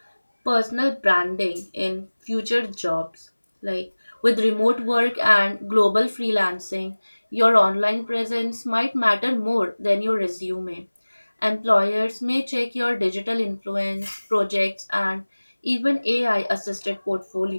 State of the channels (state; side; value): inverted; both; correlation -1.00